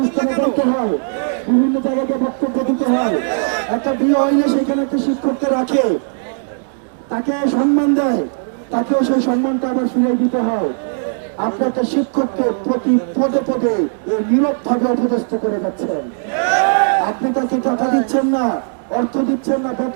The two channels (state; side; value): silent; left; digital silence